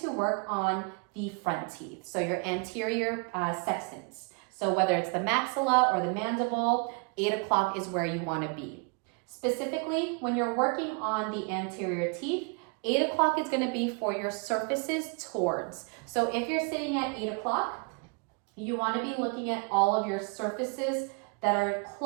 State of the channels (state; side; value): quieter; left; 34.4 dB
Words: to work on the front teeth, so your anterior sextants. So whether it's the maxilla or the mandible, 8 o'clock is where you wanna be. Specifically, when you're working on the anterior teeth, 8 o'clock is going to be for your surfaces towards. So if you're sitting at 8 o'clock, you want to be looking at all of your surfaces that are